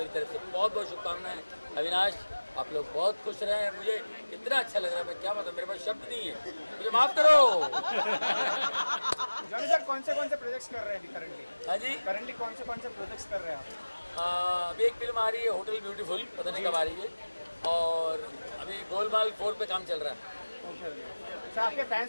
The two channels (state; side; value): inverted; both; correlation -1.00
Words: तरफ से बहुत बहुत शुभकामनाएं। अविनाश आप लोग बहुत खुश रहे हैं। मुझे इतना अच्छा लग रहा है, मैं क्या बताऊं, मेरे पास शब्द नहीं है, मुझे माफ़ करो। जॉनी सर कौन से प्रोजेक्ट्स कर रहे हैं अभी करंटली? हाँ जी, करंटली कौन से प्रोजेक्ट्स कर रहे हैं आप? अभी एक फिल्म आ रही है होटल ब्यूटीफुल, पता नहीं कब आ रही है, और अभी गोलमाल 4 पे काम चल रहा है। सर आपके